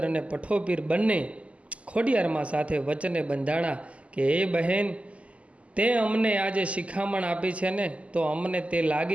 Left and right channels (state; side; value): late; left; 0.063 ms